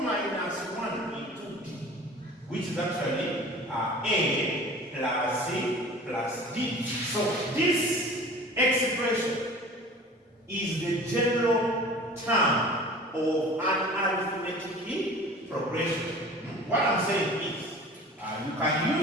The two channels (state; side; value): normal; both; correlation 0.42